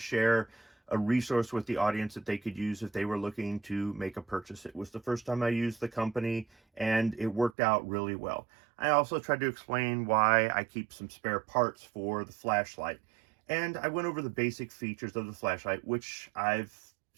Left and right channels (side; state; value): left; drops out; at 7.6 s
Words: a resource with the audience that they could use if they were looking to make a purchase. It was the first time I used the company and it worked out really well. I also tried to explain why I keep some spare parts for the flashlight. And I went over the basic features of the flashlight, which I've